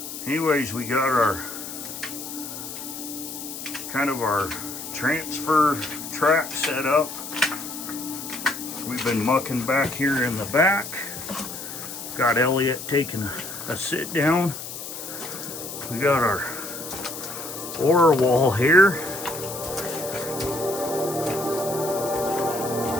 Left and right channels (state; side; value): noise; left; hiss, 9 dB below the sound